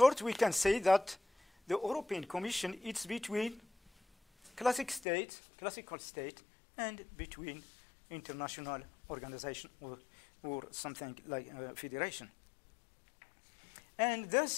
we can say that the European Commission is between classical state, and between international organization or something like federation. And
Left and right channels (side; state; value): right; drops out; at 5.1 s